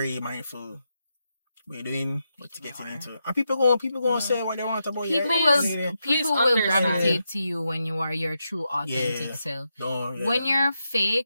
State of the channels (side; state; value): both; inverted; correlation -0.86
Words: mindful. What you're doing, what you're getting into, and people going to say what they want about you. People will gravitate to you when you are your true authentic self. When you're